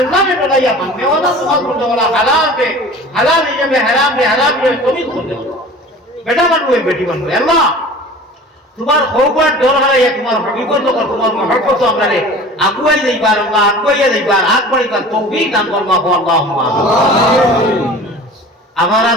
ने डराइया मानने वाला तुम्हारा सुनने वाला हलाल है में हराम है तुम्हें सुनने वाला बेटा बन हुए बेटी बन हुए अल्लाह तुम्हारा खौफर डर हराइया तुम्हारा हकीकत तो कर तुम्हारा मोहब्बत तो हमने अगुवाई नहीं बार अल्लाह अगुवाई नहीं बार आग बड़ी बार तौफीक दान फरमा हो अल्लाहुम्मा हमारा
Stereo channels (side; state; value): both; normal; correlation 0.41